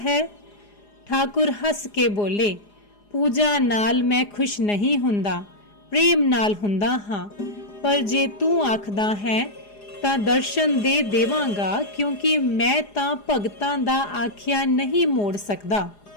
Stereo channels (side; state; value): right; late; 4.9 ms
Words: है। ठाकुर हस के बोले, पूजा नाल मैं खुश नहीं हुंदा, प्रेम नाल हुंदा हाँ, पर जे तू आखदा है तां दर्शन दे देवांगा, क्योंकि मैं तां भगतां दा आख्या नहीं मोड़ सकदा।